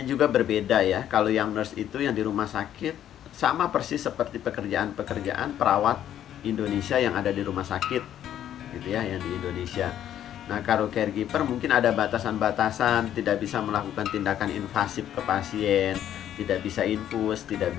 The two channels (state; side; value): quieter; right; 10.9 dB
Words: juga berbeda ya. Kalau yang nurse itu yang di rumah sakit sama persis seperti pekerjaan-pekerjaan perawat Indonesia yang ada di rumah sakit gitu ya, yang di Indonesia. Nah, kalau caregiver mungkin ada batasan-batasan, tidak bisa melakukan tindakan invasif ke pasien, tidak bisa infus, tidak